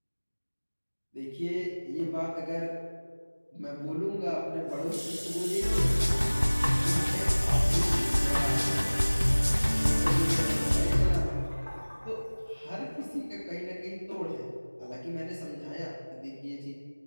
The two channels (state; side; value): inverted; both; correlation -1.00